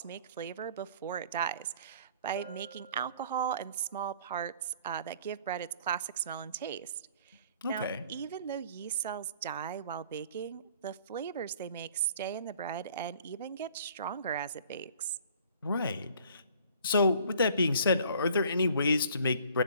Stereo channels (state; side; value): inverted; both; correlation -0.54